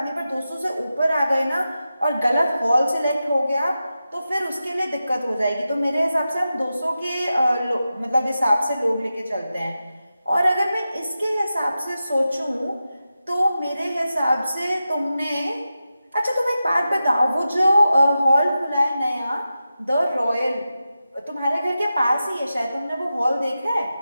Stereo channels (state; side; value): inverted; both; correlation -0.92